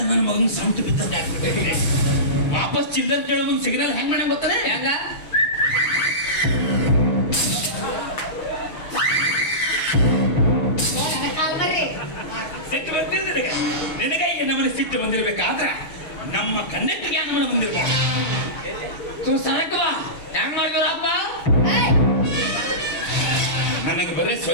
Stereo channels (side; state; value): right; late; 6.9 ms